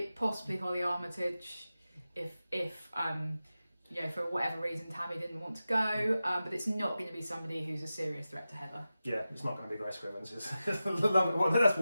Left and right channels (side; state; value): both; inverted; correlation -0.93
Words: possibly Holly Armitage, if for whatever reason Tammy didn't want to go, but it's not going to be somebody who's a serious threat to Heather. Yeah, it's not going to be Grace Scrivens. That's